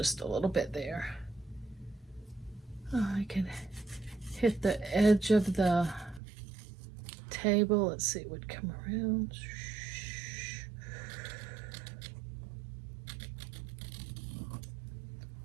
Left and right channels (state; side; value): drops out; left; at 6.2 s